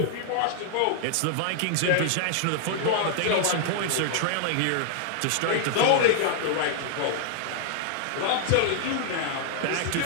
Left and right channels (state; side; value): different; both; correlation -0.01